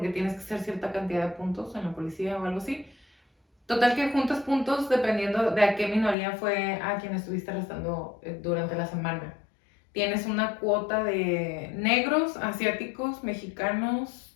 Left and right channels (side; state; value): right; drops out; at 6.2 s